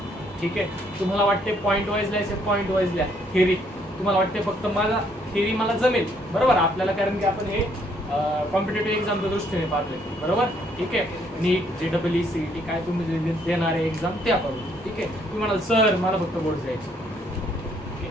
ठीक आहे? तुम्हाला वाटते पॉईंट वाईज लिहायचे, पॉईंट वाईज लिहा. थिअरी तुम्हाला वाटते फक्त मला थिअरी मला जमेल, बरोबर? आपल्याला कारण की आपण हे कॉम्पिटेटिव्ह एक्झामच्या दृष्टीने पाहतोय, बरोबर? ठीक आहे. नीट, JEE, CET काय तुम्ही देणारे एक्झाम ते आपण, ठीक आहे? तुम्ही म्हणाल सर मला फक्त बोर्ड द्यायचे,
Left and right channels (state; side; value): normal; both; correlation 0.68